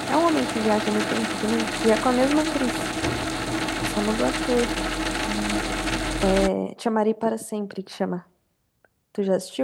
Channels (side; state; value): both; identical; correlation 1.00